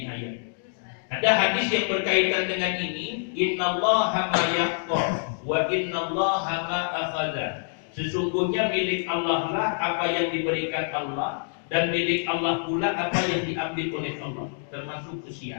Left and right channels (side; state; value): right; silent; digital silence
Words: ayat. Ada hadis yang berkaitan dengan ini, innallaha ma yaqta wa innallaha ma akhadha. Sesungguhnya milik Allah lah apa yang diberikan Allah, dan milik Allah pula apa yang diambil oleh Allah, termasuk